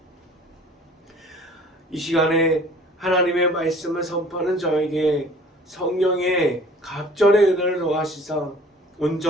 이 시간에 하나님의 말씀을 선포하는 저에게 성령의 갑절의 은혜를 더하시사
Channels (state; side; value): normal; both; correlation 0.49